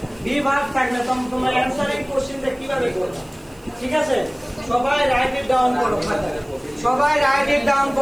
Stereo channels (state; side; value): noise; right; hiss, 29 dB below the sound